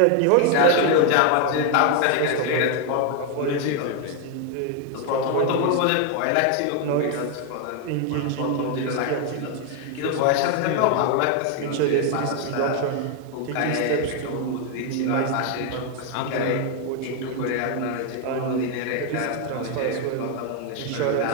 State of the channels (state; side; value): different; both; correlation 0.00